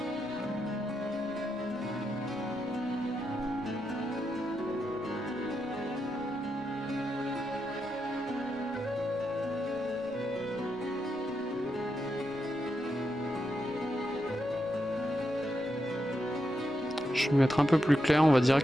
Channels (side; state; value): left; noise; rumble, 28 dB below the sound